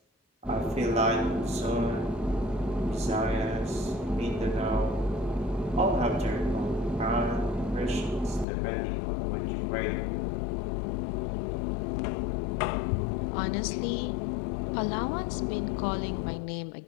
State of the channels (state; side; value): drops out; right; at 8.5 s